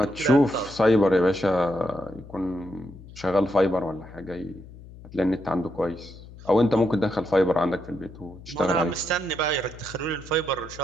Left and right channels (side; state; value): left; noise; hum, 18 dB below the sound